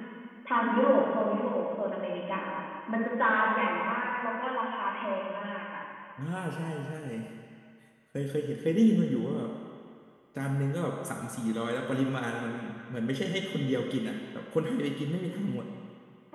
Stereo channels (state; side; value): identical; both; correlation 1.00